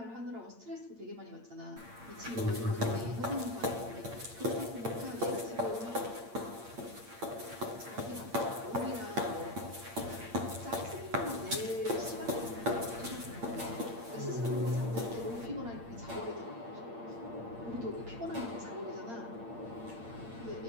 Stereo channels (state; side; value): late; left; 8.7 ms